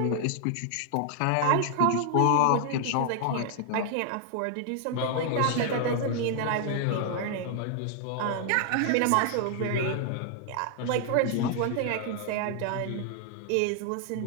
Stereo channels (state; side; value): different; both; correlation 0.00